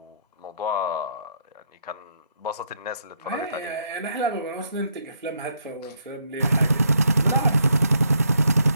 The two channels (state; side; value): inverted; both; correlation -0.74